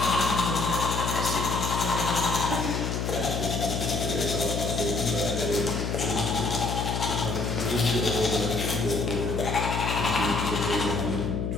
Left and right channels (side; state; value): left; noise; hum, 1 dB below the sound